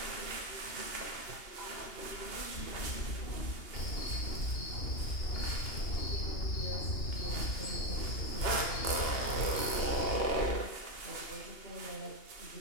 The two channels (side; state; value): right; late; 2.8 ms